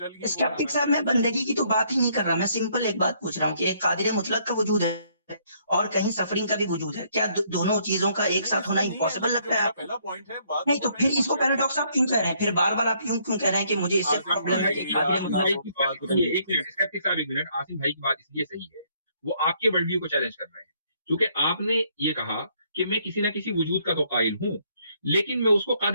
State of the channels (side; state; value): both; inverted; correlation -0.68